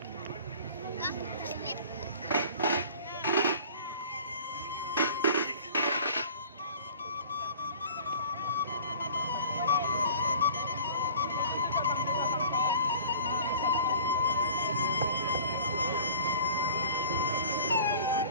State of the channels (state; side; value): inverted; both; correlation -0.45